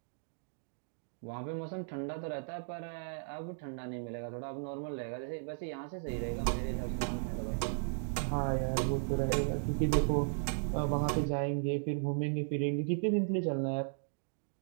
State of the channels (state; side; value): silent; left; digital silence